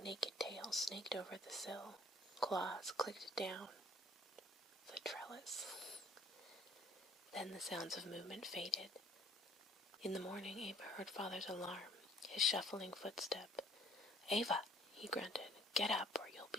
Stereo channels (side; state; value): both; normal; correlation 0.56